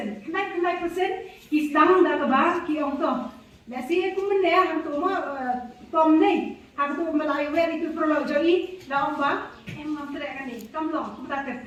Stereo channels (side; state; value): both; identical; correlation 1.00